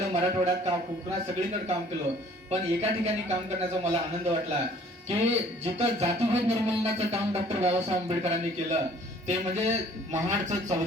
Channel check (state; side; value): normal; both; correlation 0.55